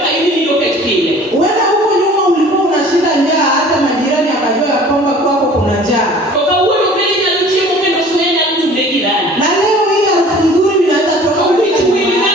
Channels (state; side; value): normal; both; correlation 0.47